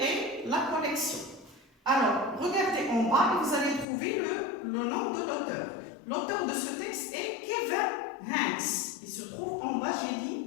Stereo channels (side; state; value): right; drops out; at 3.9 s